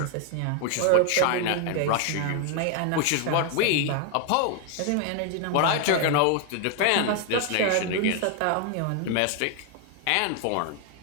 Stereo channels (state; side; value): different; both; correlation 0.01